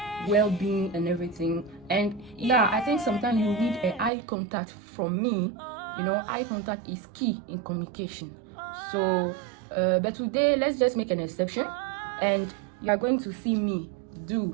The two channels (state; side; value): drops out; left; at 4.1 s